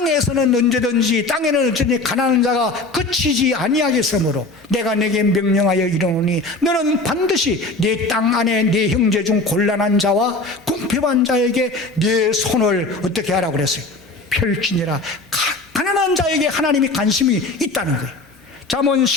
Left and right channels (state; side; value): quieter; right; 3.1 dB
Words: 언제든지, 땅에는 언제든지 가난한 자가 그치지 아니하겠으므로 내가 내게 명령하여 이르노니 너는 반드시 네 땅 안에 네 형제 중 곤란한 자와 궁핍한 자에게 네 손을 어떻게 하라고 그랬어요? 펼치니라. 가난한 자에게 하나님이 관심이 있다는 거예요. 잠언